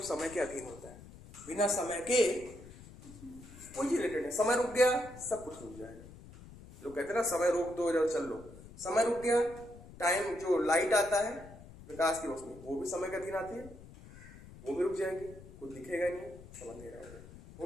समय के अधीन होता है। बिना समय के कोई चीज रिलेटेड है। समय रुक गया, सब कुछ रुक जाएगा। लोग कहते हैं ना समय रोक दो इधर चल लो, समय रुक गया। टाइम जो लाइट आता है प्रकाश की रोशनी, वो भी समय के अधीन आती है, वो भी रुक जाएगी, कुछ दिखेगा नहीं, सब अंधेरा हो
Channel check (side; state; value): left; noise; rumble, 18 dB below the sound